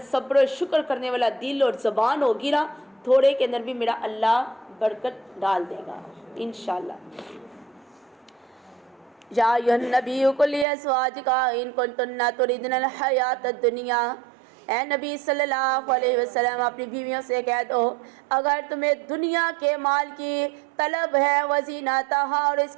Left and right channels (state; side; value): drops out; left; at 10.7 s